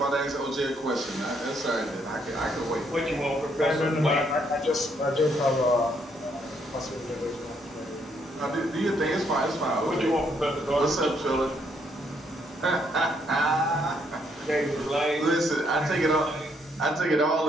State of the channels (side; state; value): both; normal; correlation 0.72